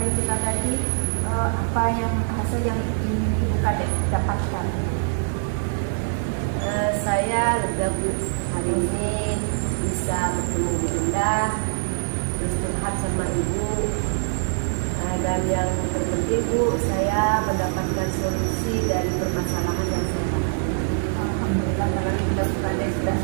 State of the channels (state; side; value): silent; left; digital silence